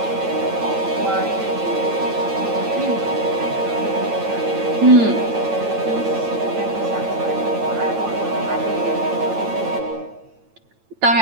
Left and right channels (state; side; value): late; left; 9.0 ms